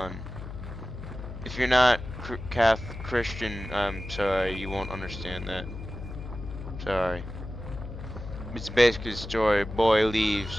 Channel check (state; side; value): noise; left; hum, 10 dB below the sound